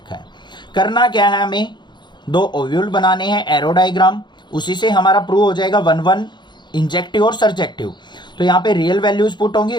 है। करना क्या है, हमें दो ओव्यूल बनाने हैं, एरो डायग्राम, उसी से हमारा प्रूव हो जाएगा 1 1 इंजेक्टिव और सर्जेक्टिव। तो यहाँ पे रियल वैल्यूज पुट होंगी,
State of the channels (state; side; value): late; right; 0.22 ms